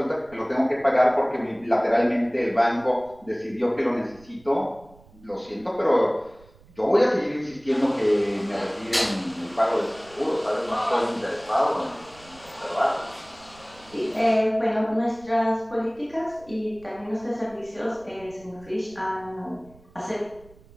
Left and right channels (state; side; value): noise; right; rumble, 25 dB below the sound